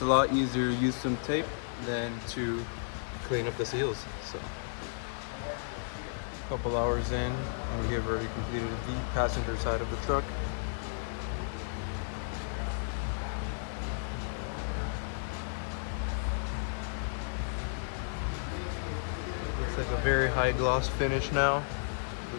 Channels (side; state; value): right; silent; digital silence